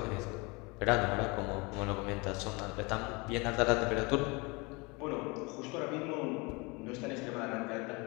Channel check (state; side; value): quieter; right; 27.5 dB